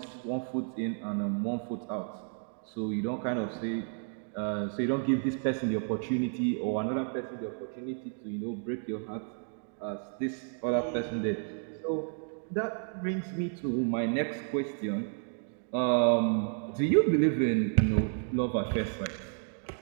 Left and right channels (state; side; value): silent; left; 57 dB below the other